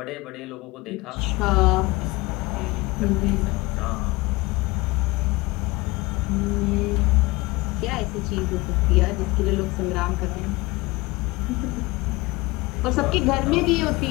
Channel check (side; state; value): right; quieter; 22.1 dB